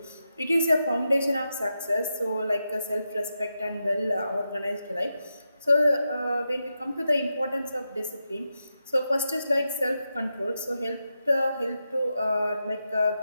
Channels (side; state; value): both; inverted; correlation -0.87